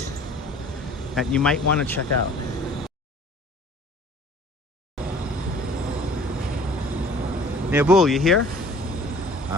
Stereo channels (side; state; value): both; normal; correlation 0.50